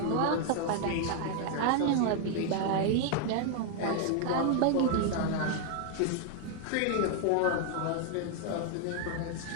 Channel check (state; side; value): different; both; correlation 0.00